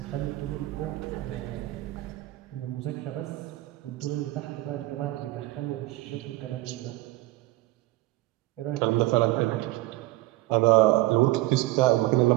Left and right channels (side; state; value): left; quieter; 18.4 dB